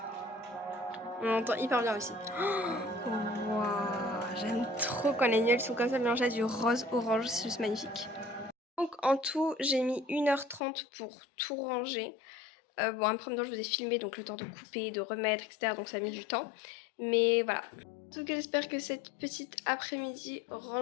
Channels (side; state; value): right; drops out; at 10.6 s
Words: On entend hyper bien aussi. Oh, wow, j'aime trop quand les nuages sont comme ça mélangés à du rose orange, c'est juste magnifique. Donc en tout j'ai mis 1h30 pour tout ranger. Bon après maintenant je vous ai filmé donc le temps de couper, de remettre etc. Donc ça a mis du temps. Mais voilà. En tout cas j'espère que cette petite après-midi